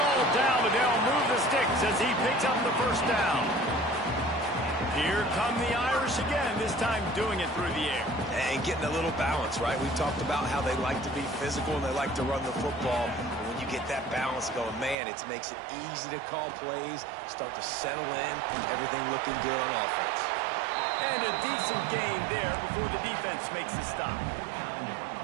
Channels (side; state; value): left; drops out; at 15.0 s